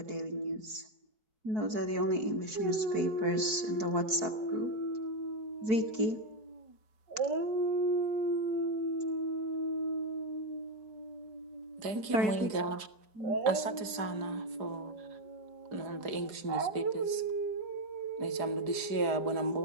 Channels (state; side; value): late; left; 4.8 ms